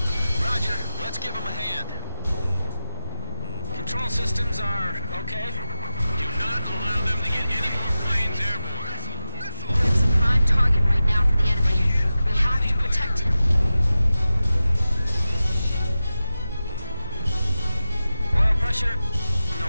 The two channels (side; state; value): both; inverted; correlation -0.97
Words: Roger, let's give him a hand. Control systems are okay. Do not allow them to get any more planes airborne. Grim's a prime target right now for the enemy. We have to protect him. Oil pressure,